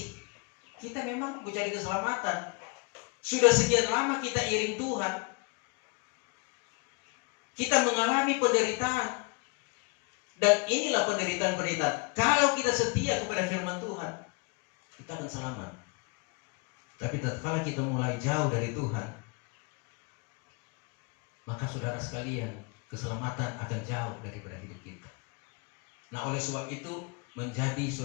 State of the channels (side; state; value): right; quieter; 30.5 dB